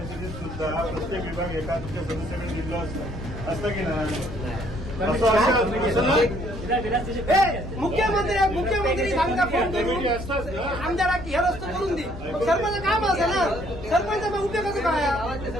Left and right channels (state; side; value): normal; both; correlation 0.64